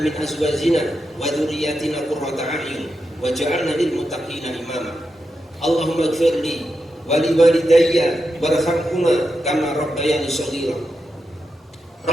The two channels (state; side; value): normal; both; correlation 0.87